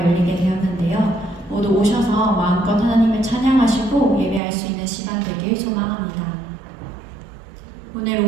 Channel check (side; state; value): left; drops out; at 4.4 s